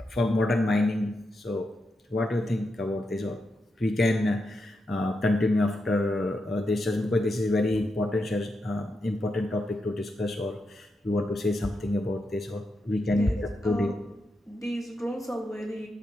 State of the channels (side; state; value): both; normal; correlation 0.86